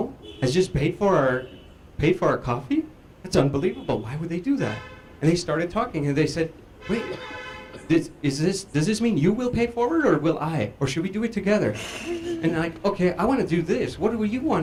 has just paid for our coffee? That's unbelievable. Why would they do that? And they started talking, and they said, wait, does this mean you will pay forward, or will I? Or should we do it together? And like, okay, I want to do this. What do you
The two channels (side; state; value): both; identical; correlation 1.00